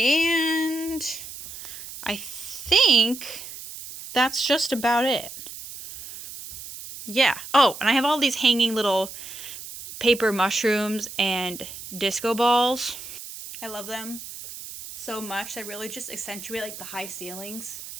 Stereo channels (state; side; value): noise; right; hiss, 12 dB below the sound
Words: I think that's just about it. Yeah. Oh, and I have all these hanging little paper mushrooms and disco balls. I love them. so much. They really just accentuate like the high ceilings.